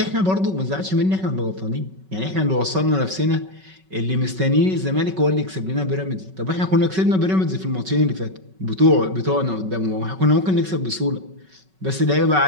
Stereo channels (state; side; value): late; left; 5.3 ms